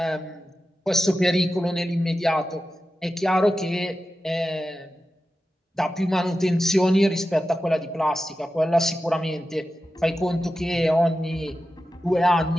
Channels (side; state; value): both; normal; correlation 0.92